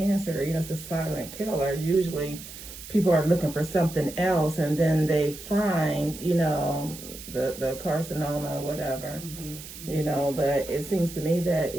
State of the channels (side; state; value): right; noise; hiss, 13 dB below the sound